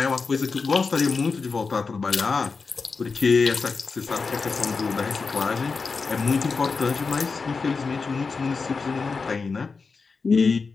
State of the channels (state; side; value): quieter; right; 4.6 dB